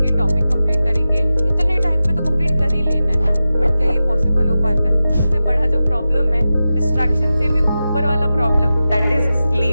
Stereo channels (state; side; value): inverted; both; correlation -0.93